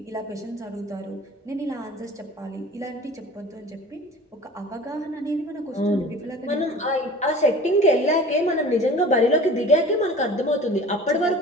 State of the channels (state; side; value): normal; both; correlation 0.41